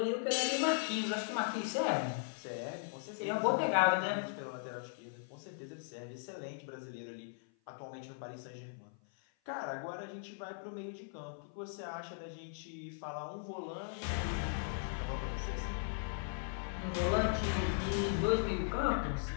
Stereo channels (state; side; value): silent; right; 52 dB below the other